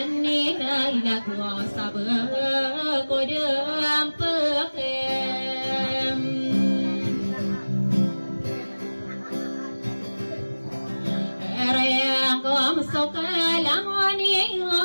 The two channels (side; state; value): both; inverted; correlation -1.00